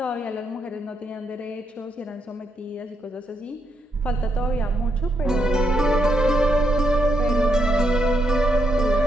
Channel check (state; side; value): normal; both; correlation 0.78